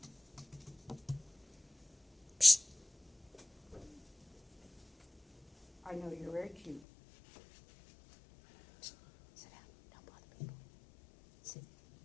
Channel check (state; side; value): drops out; right; at 6.8 s